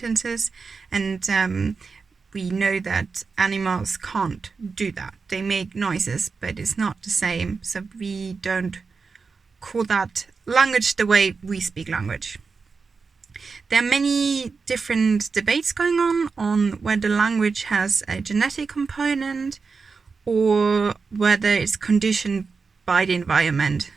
and we know that animals can't do that. They make noises, but it's not the same, so we don't call that language the way we speak language. There are many different debates going on whether language has a genetic component or whether it's conditioned by the environment.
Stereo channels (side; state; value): left; quieter; 4.8 dB